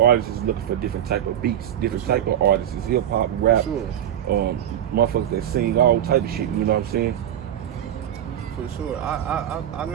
artists is looking for different type of beats, different type of artists, hip hop, rap, motherfuckers that sing all type of shit. You know what I'm saying? For sure. I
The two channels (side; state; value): left; quieter; 10.6 dB